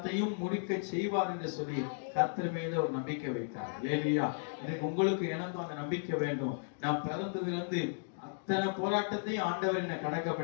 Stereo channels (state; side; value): silent; right; digital silence